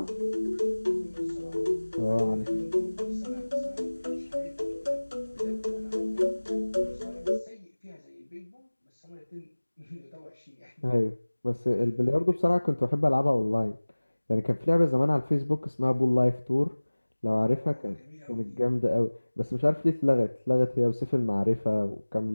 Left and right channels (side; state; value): both; inverted; correlation -1.00